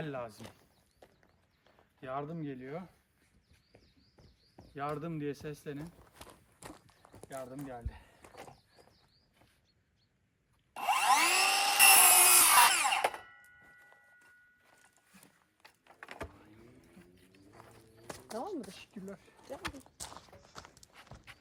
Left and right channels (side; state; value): both; identical; correlation 1.00